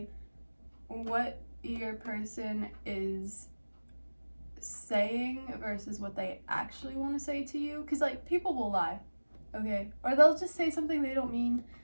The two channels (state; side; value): inverted; both; correlation -1.00